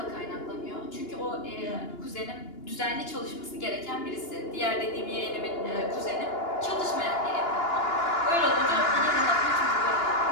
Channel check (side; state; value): right; late; 2.9 ms